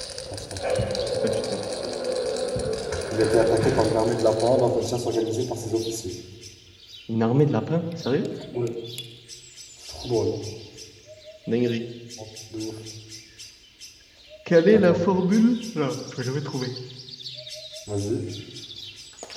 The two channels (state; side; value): identical; both; correlation 1.00